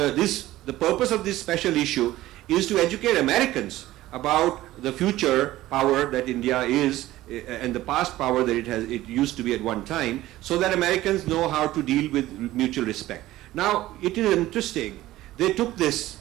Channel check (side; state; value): left; quieter; 15.8 dB